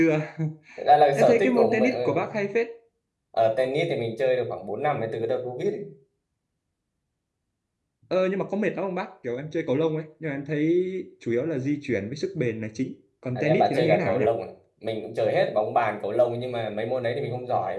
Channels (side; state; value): both; identical; correlation 1.00